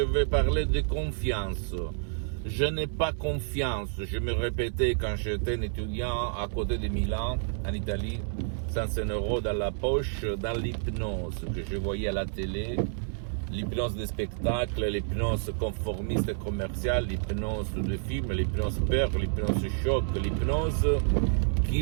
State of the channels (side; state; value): left; silent; 58 dB below the other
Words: parler de confiance. Je n'ai pas confiance. Je me répétais quand j'étais un étudiant à côté de Milan, en Italie, 105 € dans la poche, dans l'hypnose que je voyais à la télé. L'hypnose de spectacle, l'hypnose conformiste et commerciale, l'hypnose de film, l'hypnose peur, l'hypnose choc, l'hypnose